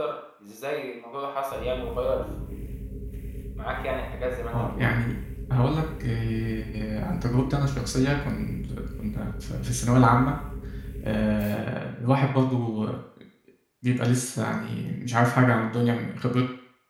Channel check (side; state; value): both; identical; correlation 1.00